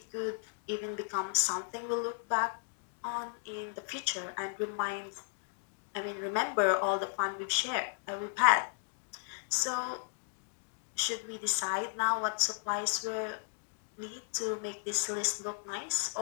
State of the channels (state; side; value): silent; right; digital silence